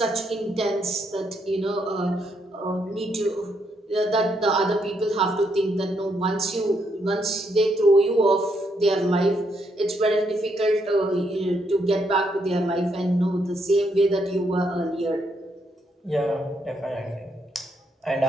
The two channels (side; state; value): both; normal; correlation 0.76